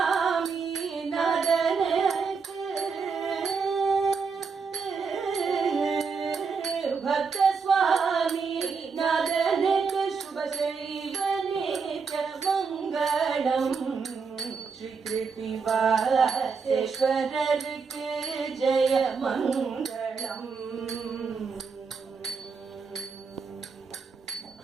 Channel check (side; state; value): left; quieter; 5.3 dB